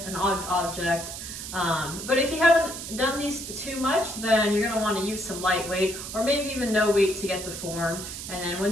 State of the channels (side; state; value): right; noise; hiss, 8 dB below the sound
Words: an odd object. But if you haven't done these too much, then you're gonna wanna use some light weight or maybe even no weight to get the form. And then